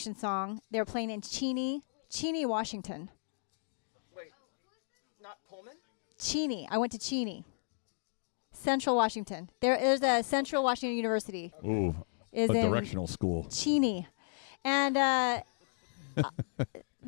song. They were playing in Cheney, Washington. Wait, not Pullman? Cheney. I went to Cheney, Central Washington. There's a Central okay. Washington University. Okay. Ooh, Is a in directional school. Cheney. And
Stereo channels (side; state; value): right; silent; digital silence